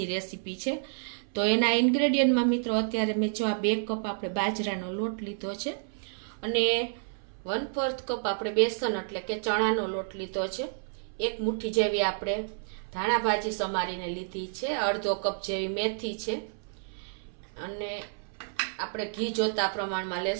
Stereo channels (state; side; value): silent; left; 58 dB below the other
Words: રેસીપી છે। તો એના ઇન્ગ્રેડિયન્ટમાં મિત્રો અત્યારે મેં જો આ 2 કપ આપણે બાજરાનો લોટ લીધો છે અને 1/4 કપ આપણે બેસન એટલે કે ચણાનો લોટ લીધો છે। 1 મુઠ્ઠી જેવી આપણે ધાણા ભાજી સમારીને લીધી છે, અડધો કપ જેવી મેથી છે અને આપણે ઘી જોતા પ્રમાણમાં